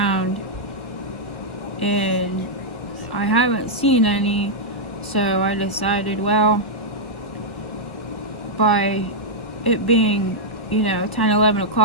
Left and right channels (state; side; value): late; right; 1.4 ms